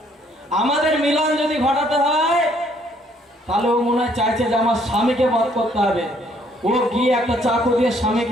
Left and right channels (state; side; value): normal; both; correlation 0.65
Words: আমাদের মিলন যদি ঘটাতে হয়, তাহলে ও মনে হয় চাইছে যে আমার স্বামীকে বধ করতে হবে। ও গিয়ে একটা চাকু দিয়ে